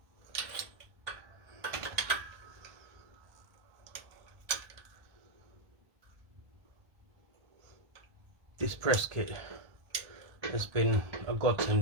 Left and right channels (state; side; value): late; left; 1.4 ms